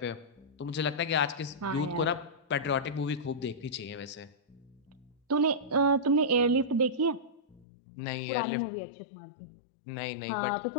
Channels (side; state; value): right; drops out; at 7.7 s